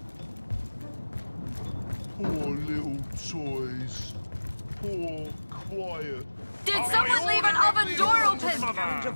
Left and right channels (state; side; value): inverted; both; correlation -1.00